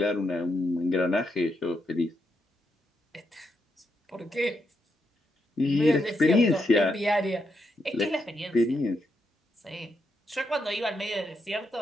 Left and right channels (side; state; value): both; normal; correlation 0.81